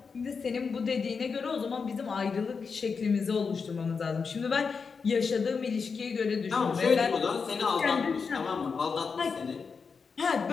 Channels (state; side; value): quieter; right; 5.3 dB